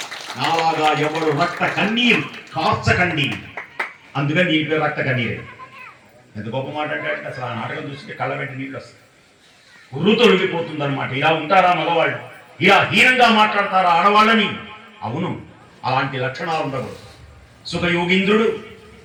నాలాగా ఎవరు రక్త కన్నీరు కార్చకండి. అందుకని నీ పేరు రక్త కన్నీరు. ఎంత గొప్ప మాట అంటే అసలు ఆ నాటకం చూస్తే కళ్ళ వెంట నీళ్ళు వస్తాయి, ఉర్రు తొలగిపోతుంది అనమాట. ఇలా ఉంటారా మగవాళ్ళు? ఇలా హీనంగా మాట్లాడతారా ఆడవాళ్ళని? అవును, అలాంటి లక్షణాలు ఉండకూడదు. సుఖయోగీంద్రుడు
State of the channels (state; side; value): identical; both; correlation 1.00